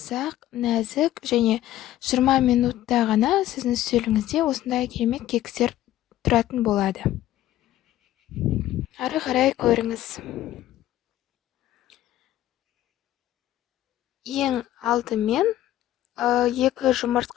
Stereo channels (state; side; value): quieter; right; 13.7 dB